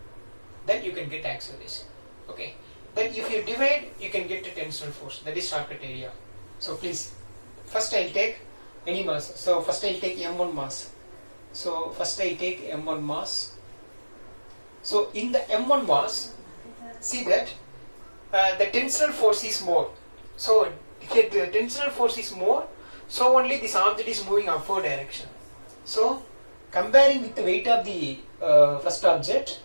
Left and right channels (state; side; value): inverted; both; correlation -1.00